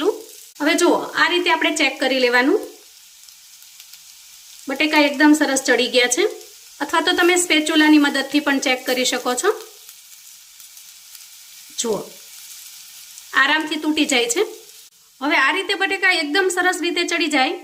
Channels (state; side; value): identical; both; correlation 1.00